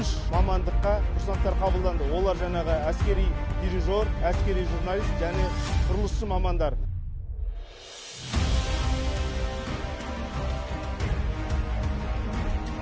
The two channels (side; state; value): both; identical; correlation 1.00